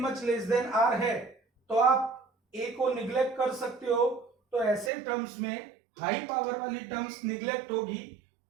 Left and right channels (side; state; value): left; drops out; at 4.9 s